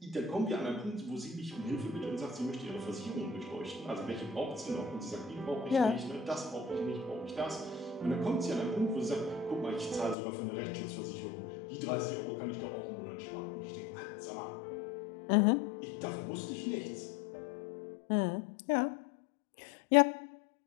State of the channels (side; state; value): right; drops out; at 10.2 s